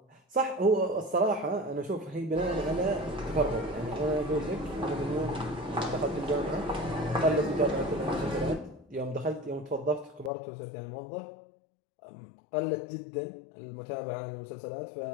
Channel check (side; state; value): right; drops out; at 10.3 s